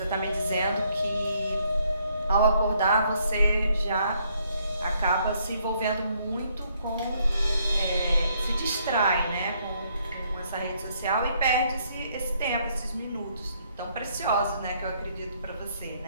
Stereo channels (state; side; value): inverted; both; correlation -0.70